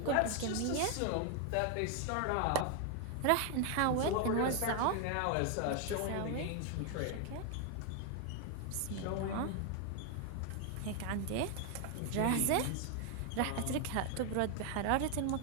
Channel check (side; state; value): both; different; correlation 0.01